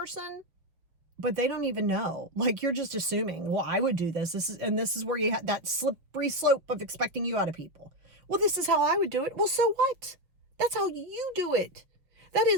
but they don't even know. Like, you're just assuming, well, I would do this. This is where you have that slippery slope of expecting you out of people. Well, this is how I would do it. Well, so what? That's how you do it. That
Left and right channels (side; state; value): left; late; 5.8 ms